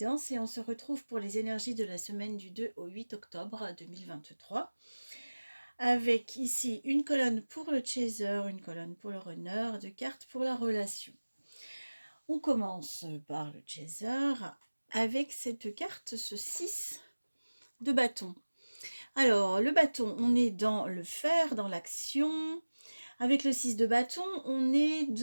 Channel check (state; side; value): inverted; both; correlation -1.00